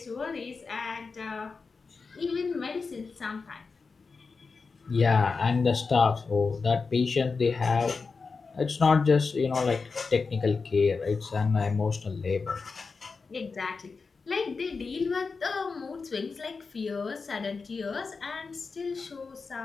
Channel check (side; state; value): right; quieter; 4.6 dB